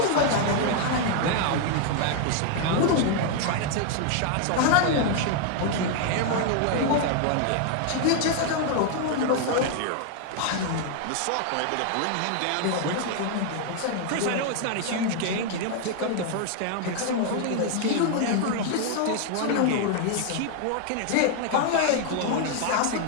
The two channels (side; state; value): both; different; correlation 0.00